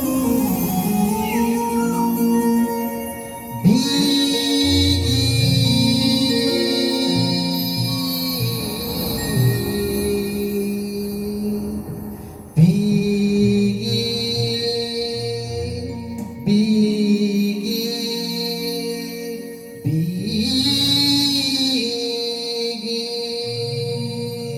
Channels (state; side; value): identical; both; correlation 1.00